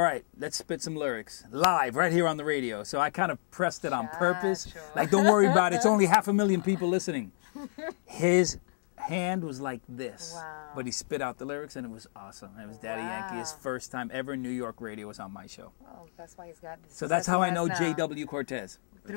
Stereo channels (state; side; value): silent; right; digital silence